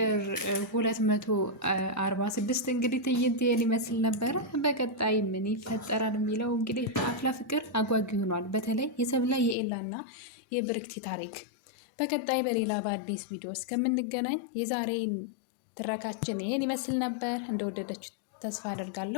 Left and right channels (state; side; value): drops out; right; at 9.6 s